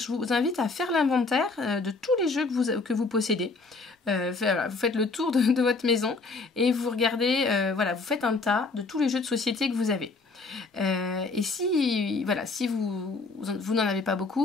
vous invite à faire l'inventaire de tous les jeux que vous possédez. Vous faites le tour de votre maison et vous regardez, vous faites un tas de tous les jeux de société que vous avez. Et si vous n'en avez pas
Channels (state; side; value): quieter; right; 3.9 dB